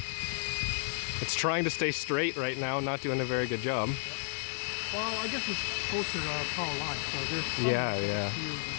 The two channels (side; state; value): right; silent; digital silence